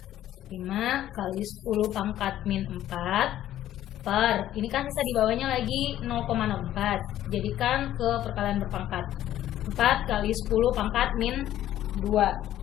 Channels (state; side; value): quieter; right; 12.7 dB